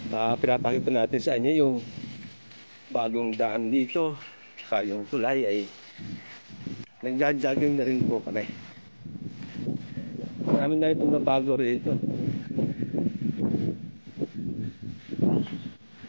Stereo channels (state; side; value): inverted; both; correlation -1.00